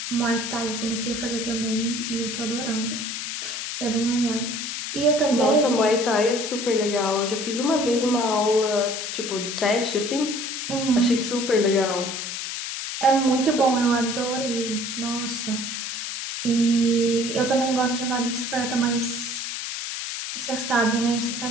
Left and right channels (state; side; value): noise; left; hiss, 5 dB below the sound